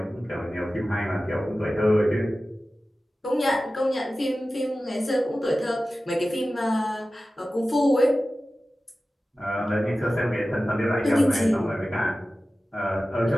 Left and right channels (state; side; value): normal; both; correlation 0.95